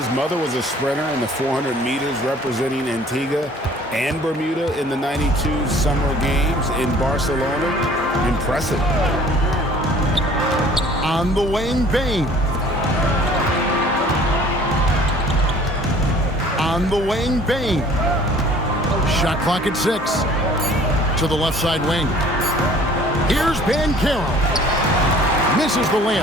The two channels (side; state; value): both; normal; correlation 0.52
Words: mother was a sprinter in the 400 meters representing Antigua and Bermuda in the 92 Summer Games in Barcelona. Impressive. On the wing, Bane. On the wing, Bane. Shot clock at 6. To the left side wing. Here's Banchero. Misses the